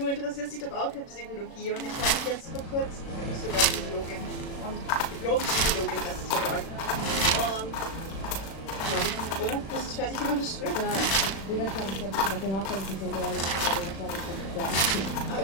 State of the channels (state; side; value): late; right; 36 ms